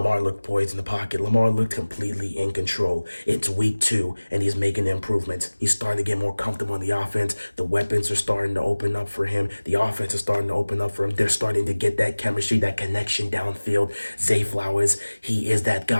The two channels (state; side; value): inverted; both; correlation -1.00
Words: looked poised in the pocket. Lamar looked completely in control. It's week 2, and he's making improvements. He's starting to get more comfortable in the offense. The weapons are starting to open up for him. The offense is starting to open up for him. They're starting to get that chemistry, that connection downfield. Zay Flowers, he is that